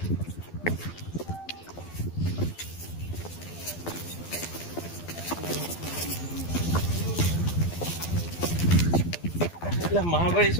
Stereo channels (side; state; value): right; late; 12 ms